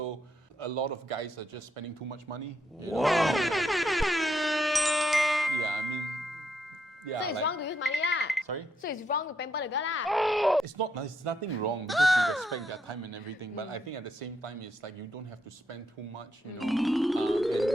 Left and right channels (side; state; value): both; normal; correlation 0.78